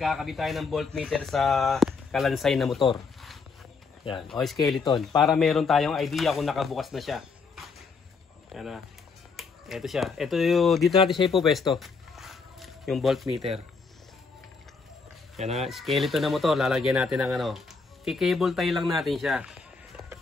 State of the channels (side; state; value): right; quieter; 4.7 dB